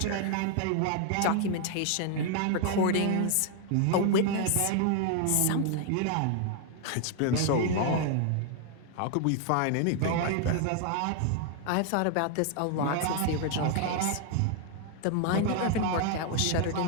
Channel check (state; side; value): different; both; correlation 0.00